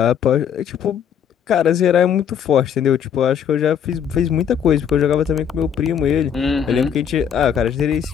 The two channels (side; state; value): right; quieter; 8.3 dB